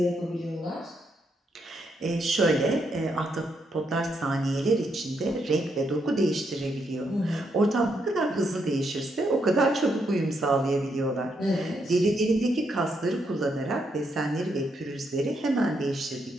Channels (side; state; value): both; normal; correlation 0.78